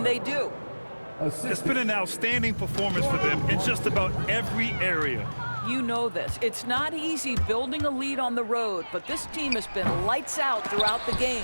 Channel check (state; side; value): inverted; both; correlation -1.00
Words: they do. It's been an outstanding performance for them in just about every area. You know this. It's not easy building a lead on the road, but this team has been lights out throughout the